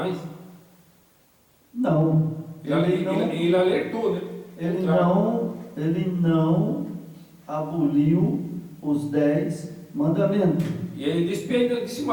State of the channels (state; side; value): identical; both; correlation 1.00